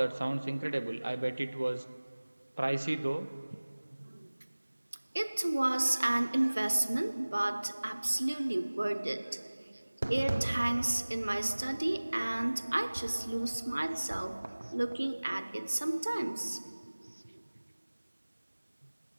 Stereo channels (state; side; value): inverted; both; correlation -1.00